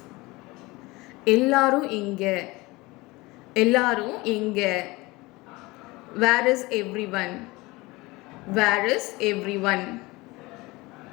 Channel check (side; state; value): right; quieter; 22.2 dB